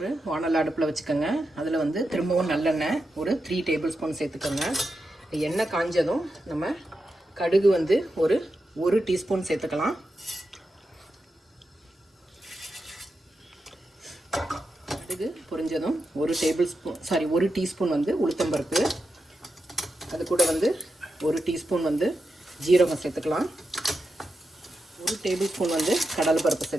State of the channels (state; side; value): normal; both; correlation 0.88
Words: வானல் அடுப்பில் வச்சுக்கோங்க. அதில் திரும்பவும் நல்லெண்ணெய் ஒரு 3 டேபிள் ஸ்பூன் சேர்த்துக்கோங்க. எண்ணெய் காஞ்சதும் நம்ம கடுகு ஒரு 1 டீஸ்பூன் சேர்த்துக்கலாம். கடுகு பொரிஞ்சதும் ஒரு டீஸ்பூன் உளுத்தம்பருப்பு, அது கூட 1 டீஸ்பூன் ஜீரகம் சேர்த்துக்கலாம். 1 டேபிள் ஸ்பூன் கடலை பருப்பு